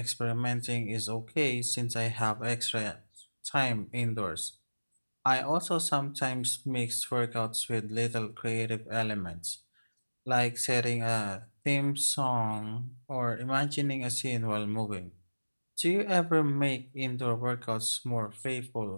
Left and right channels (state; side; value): inverted; both; correlation -1.00